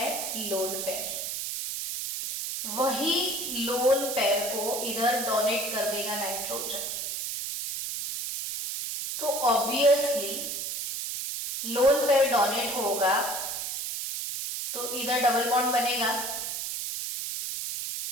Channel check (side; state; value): right; noise; hiss, 4 dB below the sound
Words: Lone pair. वही लोन पेयर को इधर डोनेट कर देगा नाइट्रोजन. तो ऑब्वियसली लोन पेयर डोनेट होगा तो इधर डबल बॉन्ड बनेगा